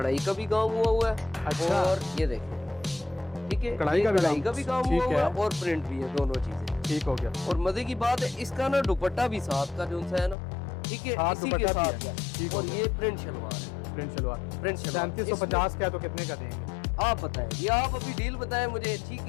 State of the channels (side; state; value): right; drops out; at 10.4 s